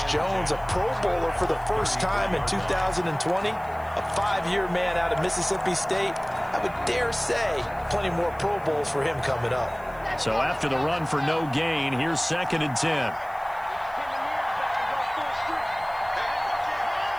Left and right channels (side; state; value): left; noise; hiss, 27 dB below the sound